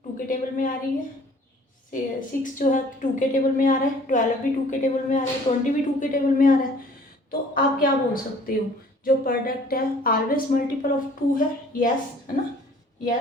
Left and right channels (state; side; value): normal; both; correlation 0.53